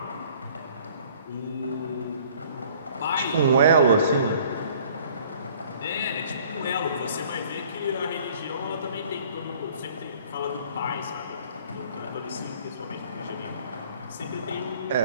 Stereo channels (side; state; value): both; inverted; correlation -0.54